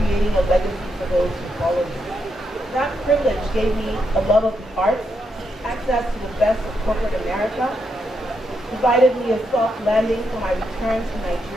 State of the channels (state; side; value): normal; both; correlation 0.81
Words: a legacy for those who follow me. That privilege gave me a love of the arts, access to the best of corporate America, provided me a soft landing for my return to